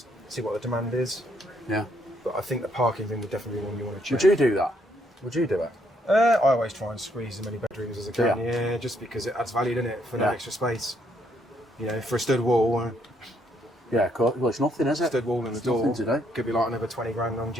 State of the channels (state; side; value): normal; both; correlation 0.72